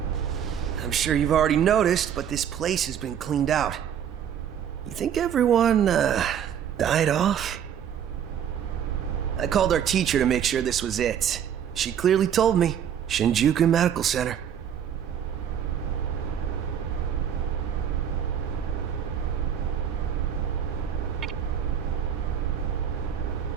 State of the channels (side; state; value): left; quieter; 8.9 dB